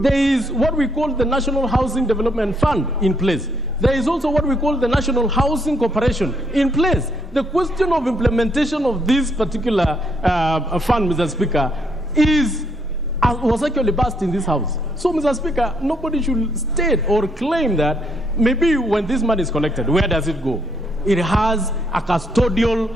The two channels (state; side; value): normal; both; correlation 0.72